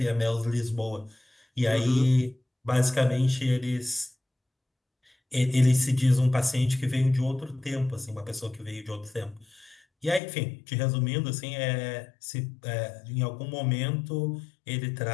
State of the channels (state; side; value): drops out; right; at 10.2 s